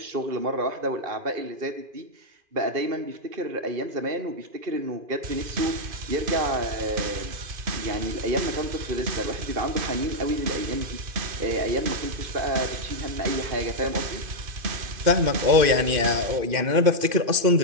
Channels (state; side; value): late; left; 2.5 ms